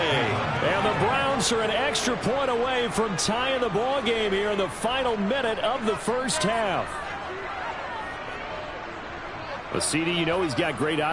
the Browns are an extra point away from tying the ball game here in the final minute of the 1st half. Well, CD, you know he's got great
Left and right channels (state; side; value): identical; both; correlation 1.00